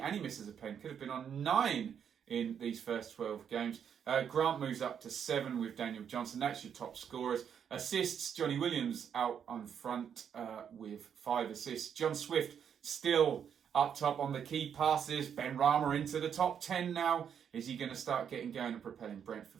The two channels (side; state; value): left; quieter; 8.0 dB